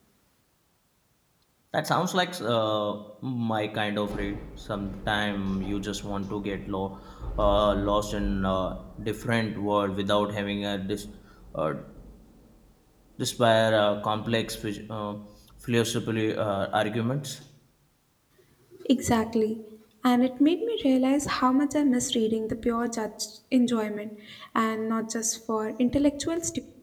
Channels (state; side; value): identical; both; correlation 1.00